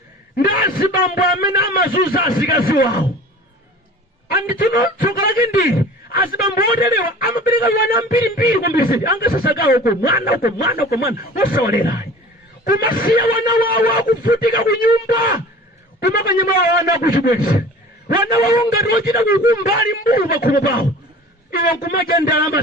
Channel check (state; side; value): normal; both; correlation 0.42